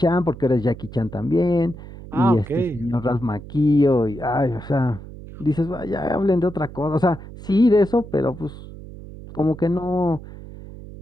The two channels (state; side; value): noise; right; hum, 15 dB below the sound